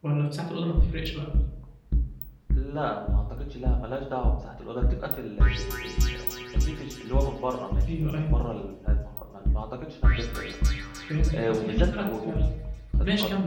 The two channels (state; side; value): identical; both; correlation 1.00